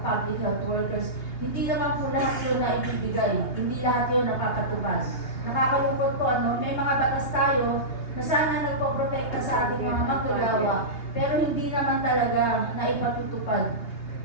Health Workers, hindi naman po lahat yun na ibibigay, hindi lahat yun napapatupad. Nakakalungkot po, may mga batas tayo na sana nagpoprotekta sa ating mga manggagawa, pero hindi naman talaga naipatutupad.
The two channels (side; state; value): right; late; 2.8 ms